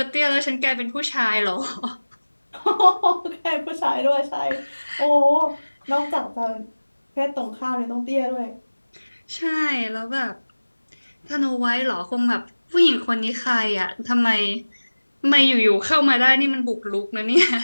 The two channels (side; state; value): both; inverted; correlation -1.00